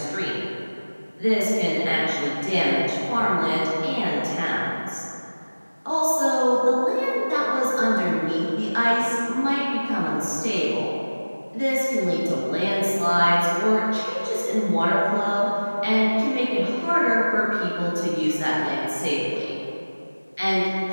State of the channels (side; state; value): both; inverted; correlation -1.00